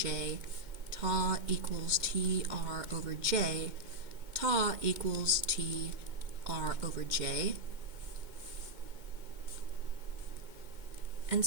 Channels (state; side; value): late; left; 2.2 ms